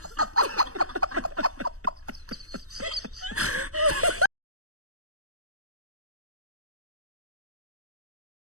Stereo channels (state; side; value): late; left; 0.65 ms